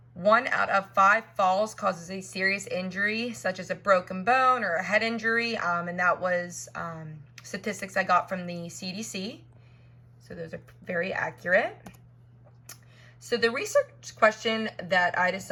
1 out of 5 falls causes a serious injury, such as a broken bone or a head injury, and that was statistics I got from the CDC. So those are very accurate. So the research question that I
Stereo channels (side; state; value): both; identical; correlation 1.00